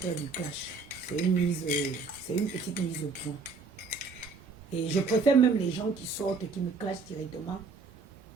du clash. C'est une petite mise au point. Et je préfère même les gens qui sortent, qui me clashent directement,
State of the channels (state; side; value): quieter; left; 4.4 dB